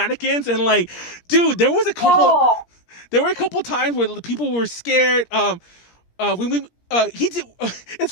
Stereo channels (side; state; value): right; late; 17 ms